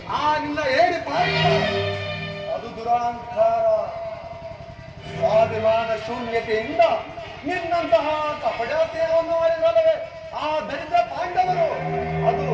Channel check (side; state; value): both; identical; correlation 1.00